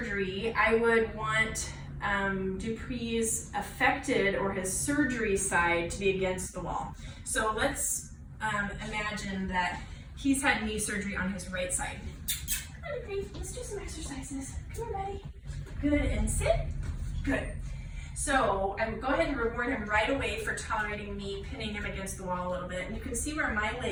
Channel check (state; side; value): identical; both; correlation 1.00